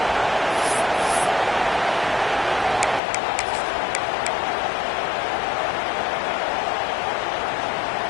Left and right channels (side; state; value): right; drops out; at 3.0 s